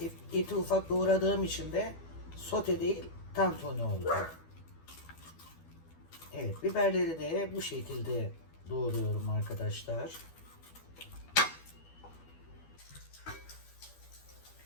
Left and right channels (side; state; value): right; late; 12 ms